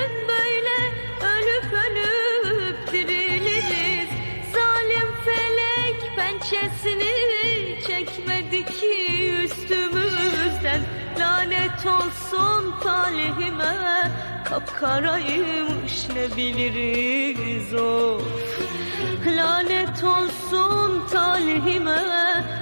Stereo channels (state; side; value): inverted; both; correlation -1.00